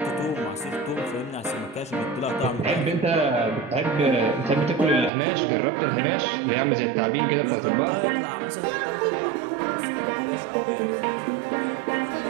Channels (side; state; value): left; drops out; at 5.1 s